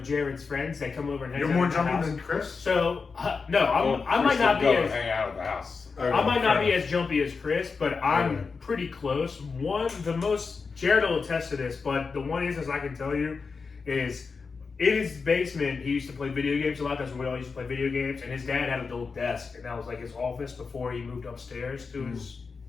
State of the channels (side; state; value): right; quieter; 4.9 dB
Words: Jared's friends that come over and hang out. You're more at the jumpy house. than Chris? So I might not be as hang out at the house. I might not be as jumpy as Chris, but I'm pretty close. Jared will attest to this, but the one instance I can tell you is in his basement, he used to play video games a lot. That's where we all used to play video games. And his dad had a little desk, and that was like his office before he moved upstairs to